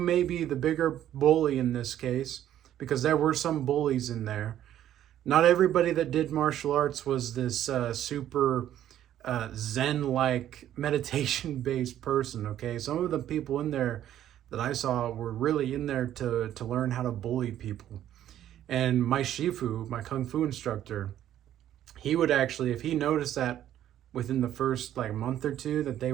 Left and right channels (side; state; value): left; quieter; 11.6 dB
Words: be the bigger bully in this case, because there were some bullies in there. Not everybody that did martial arts was this super Zen-like meditation-based person, okay? Some of the people in there that I saw were really in there to learn how to bully people. And my Shifu, my Kung Fu instructor, he would actually, if he noticed that within the first like month or two that they